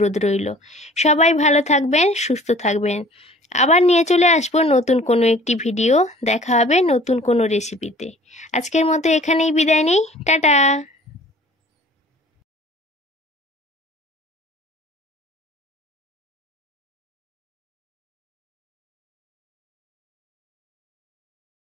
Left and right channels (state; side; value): normal; both; correlation 0.49